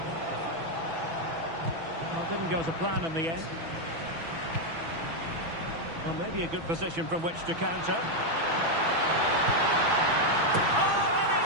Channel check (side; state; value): left; late; 6.1 ms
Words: Well, didn't go to plan in the end. Well, maybe a good position from which to counter. Oh, and